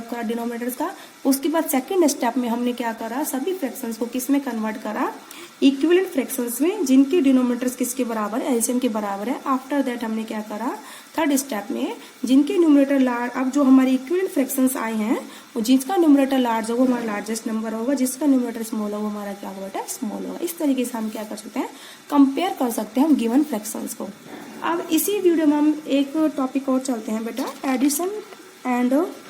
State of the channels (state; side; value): identical; both; correlation 1.00